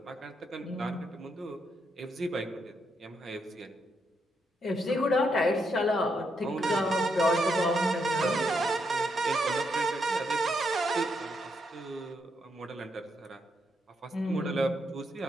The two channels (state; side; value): normal; both; correlation 0.79